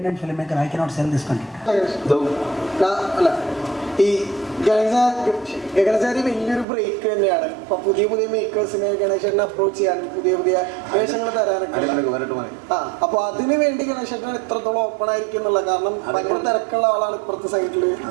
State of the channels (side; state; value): left; drops out; at 6.7 s